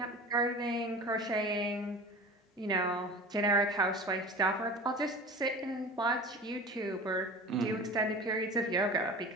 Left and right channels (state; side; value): normal; both; correlation 0.36